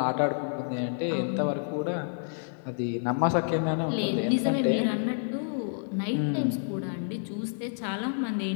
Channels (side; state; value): right; silent; 59 dB below the other